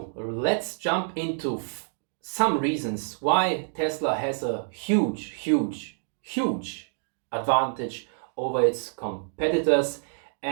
let's jump into some reasons why Tesla has a huge advantage over its competitors,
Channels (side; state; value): left; silent; 60 dB below the other